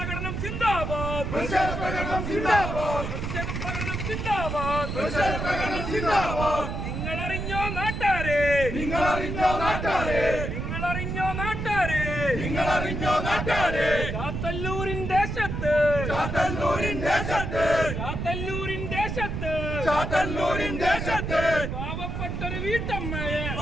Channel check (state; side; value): noise; right; rumble, 4 dB below the sound